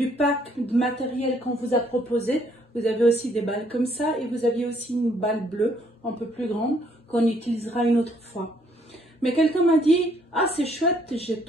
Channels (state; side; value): normal; both; correlation 0.67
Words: pack de matériel qu'on vous a proposé. Vous avez aussi des balles comme ça et vous aviez aussi une balle bleue un peu plus grande qu'on utilisera une autre fois. Mais quelqu'un m'a dit « Ah, c'est chouette, j'ai